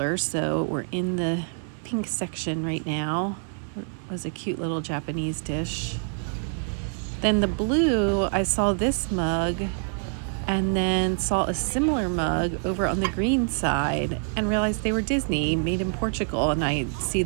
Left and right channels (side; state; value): left; silent; 58 dB below the other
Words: so we're in the pink section right now. It was a cute little Japanese dish. Then the blue, I saw this mug and then saw a similar mug over on the green side and realized they were Disney, made in Portugal, and I see